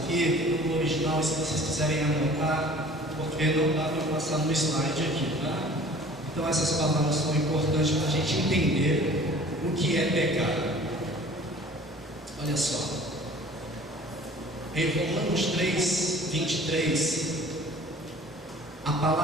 no original, se vocês quiserem anotar, porque não dá para passar no slide aqui, tá? Então essas palavras são importantes para a gente entender o que é pecado. Olha só, em Romanos 3, 23, a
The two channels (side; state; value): both; normal; correlation 0.47